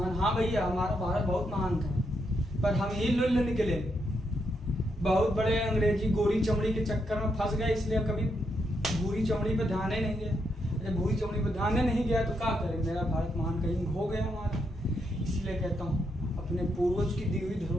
हाँ भैया, हमारा भारत बहुत महान था, पर हम ही लुल्ल निकले, बहुत बड़े अंग्रेजी गोरी चमड़ी के चक्कर में फंस गए, इसलिए कभी भूरी चमड़ी पे ध्यान ही नहीं गया। जब भूरी चमड़ी पे ध्यान ही नहीं गया तो क्या करें, मेरा भारत महान कहीं हो गया हमारा। इसलिए कहता हूँ अपने पूर्वज की दी हुई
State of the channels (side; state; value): both; normal; correlation 0.80